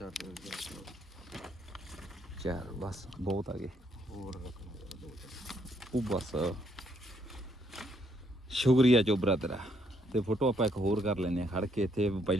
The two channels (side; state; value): both; normal; correlation 0.71